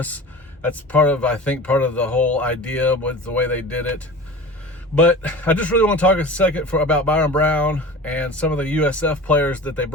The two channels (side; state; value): both; normal; correlation 0.36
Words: That's part of the whole idea with the way they did it. But I just really want to talk a second about Byrum Brown and some of the USF players that they